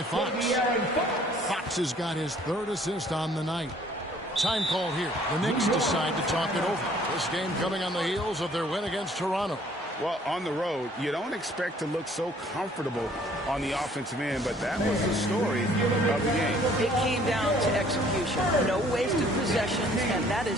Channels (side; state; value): both; normal; correlation 0.58